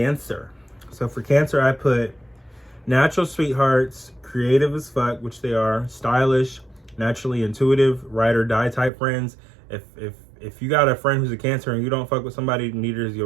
So for Cancer, I put natural sweethearts, creative as fuck, which they are, stylish, naturally intuitive, ride or die type friends. If you got a friend who's a Cancer and you don't fuck with somebody, neither is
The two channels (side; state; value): left; drops out; at 8.9 s